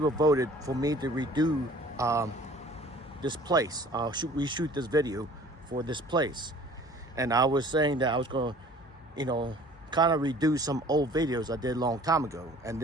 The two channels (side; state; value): both; normal; correlation 0.50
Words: voted for me to redo this place. Reshoot this video for this place. And I was saying that I was going to, you know, kind of redo some old videos I did a long time ago. And